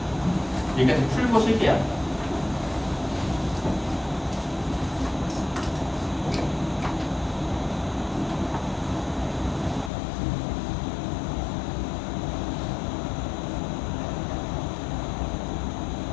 여기까지 풀고 쉴게요.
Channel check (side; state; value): right; drops out; at 9.9 s